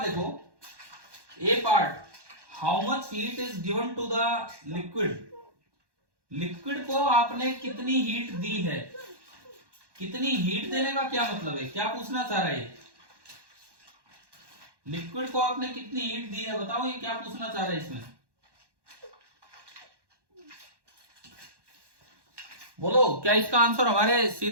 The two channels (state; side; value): late; left; 1.1 ms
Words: देखो A part, how much heat is given to the liquid, liquid को आपने कितनी हीट दी है, कितनी हीट देने का क्या मतलब है, क्या पूछना चाह रहा है? लिक्विड को आपने कितनी हीट दी है, बताओ ये क्या पूछना चाह रहा है इसमें, बोलो। क्या इसका आंसर हमारे